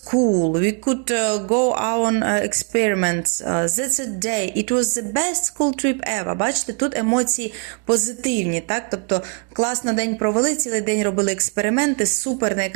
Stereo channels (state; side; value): quieter; left; 37.5 dB